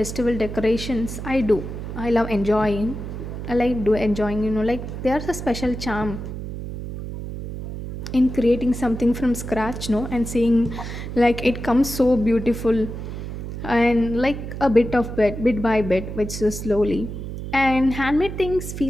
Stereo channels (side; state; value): right; noise; hum, 7 dB below the sound